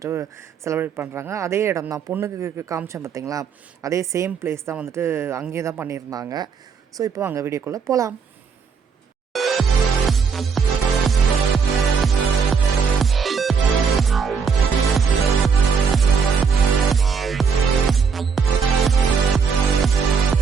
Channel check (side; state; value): left; quieter; 5.8 dB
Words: செலிப்ரேட் பண்ணுறாங்க. அதே இடம் தான், பொண்ணுக்கு காமிச்சேன் பார்த்தீங்களா, அதே சேம் பிளேஸ் தான் வந்துட்டு அங்கேயே தான் பண்ணியிருந்தாங்க. ஸோ இப்போ அங்கே வீடியோக்குள்ளே போகலாம்.